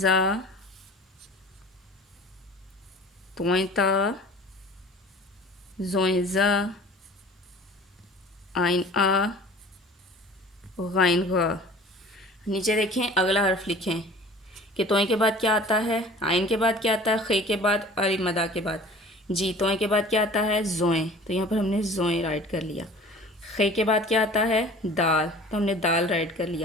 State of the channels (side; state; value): both; normal; correlation 0.45